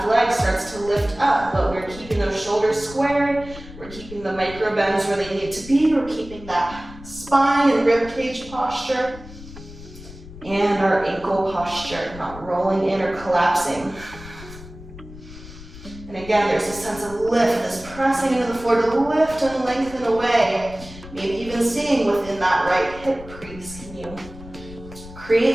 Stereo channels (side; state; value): left; noise; rumble, 16 dB below the sound